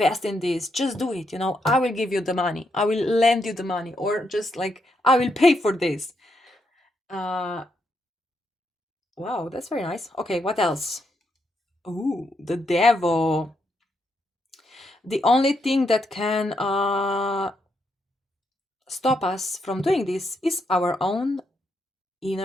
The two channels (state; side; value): normal; both; correlation 0.79